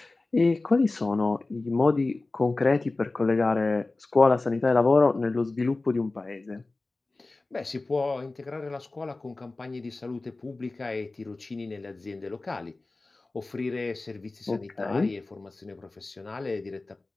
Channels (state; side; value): quieter; right; 3.3 dB